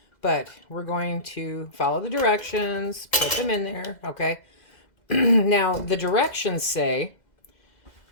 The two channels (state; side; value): late; right; 2.0 ms